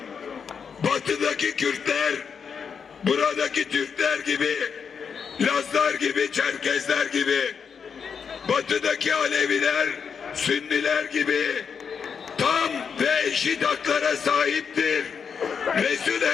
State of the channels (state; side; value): quieter; right; 6.5 dB